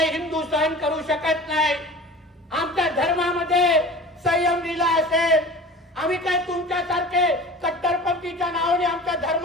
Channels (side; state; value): both; normal; correlation 0.39